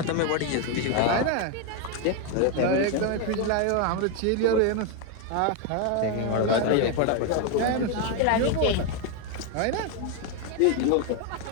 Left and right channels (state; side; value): different; both; correlation 0.01